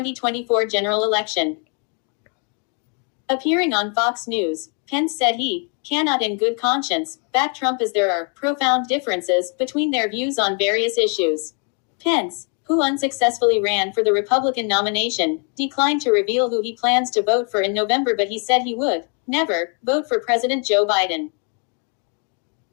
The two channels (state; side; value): quieter; right; 39.4 dB